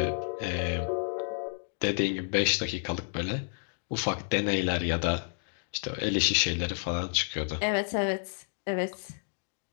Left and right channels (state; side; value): silent; right; digital silence